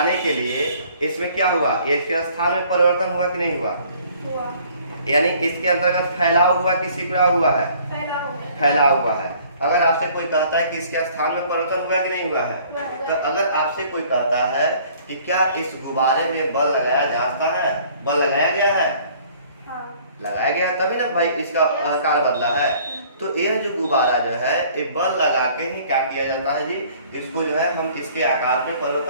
के लिए इसमें क्या हुआ, इसके स्थान में परिवर्तन हुआ कि नहीं हुआ, यानी इसके अंतर्गत फैलाव हुआ कि सिकुड़ा हुआ है, फैलाव हुआ है। अगर आपसे कोई कहता है कि इसके स्थान में परिवर्तन हुआ कि नहीं हुआ है, तो अगर आपसे कोई कहता है कि क्या इस गुब्बारे में बल लगाया जाता है, बल लगाया गया है, लगाया गया तभी ना भाई इसका आकार बदला है। तो यह जो गुब्बारा जो है ये बल लगा के ही क्या किया जाता है जी, इसको जो है हम इसके आकार में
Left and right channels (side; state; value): both; inverted; correlation -0.56